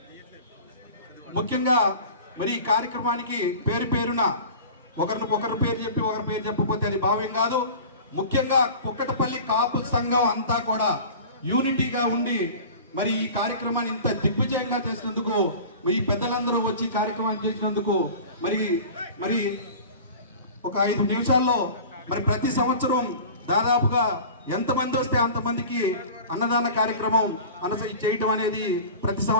ముఖ్యంగా మరి ఈ కార్యక్రమానికి పేరున ఒకరి పేరు చెప్పకపోతే అది భావ్యం కాదు. ముఖ్యంగా కుక్కటపల్లి కాపు సంఘం అంతా కూడా యూనిటీగా ఉండి మరి ఈ కార్యక్రమాన్ని ఇంత దిగ్విజయంగా చేసినందుకు, ఈ పెద్దలందరూ వచ్చి కార్యక్రమాన్ని చేసినందుకు మరి ఒక 5 నిమిషాల్లో మరి ప్రతి సంవత్సరం దాదాపుగా ఎంతమంది వస్తే అంతమందికి అన్నదాన కార్యక్రమం చేయటం అనేది ప్రతి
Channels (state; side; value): inverted; both; correlation -0.38